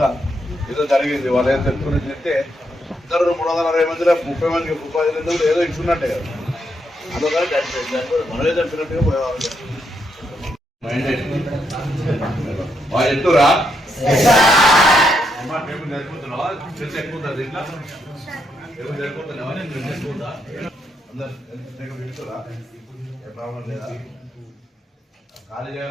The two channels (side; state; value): both; normal; correlation 0.79